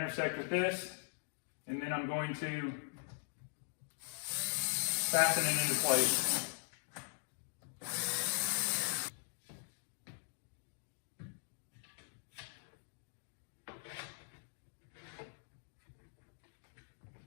with this. And then I'm going to fasten it into place.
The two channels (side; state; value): right; silent; digital silence